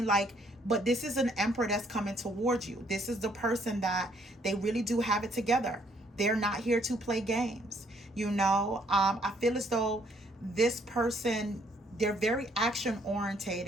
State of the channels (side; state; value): both; normal; correlation 0.66